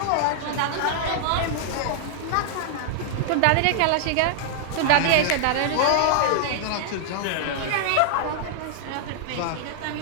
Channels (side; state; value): both; different; correlation -0.01